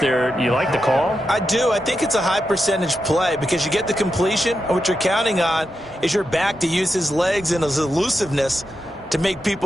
there. You like the call? I do. I think it's a high percentage play because you get the completion, and what you're counting on is your back to use his legs and his elusiveness to make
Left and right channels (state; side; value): normal; both; correlation 0.87